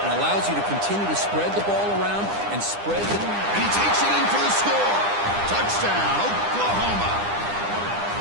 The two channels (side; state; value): left; late; 9.9 ms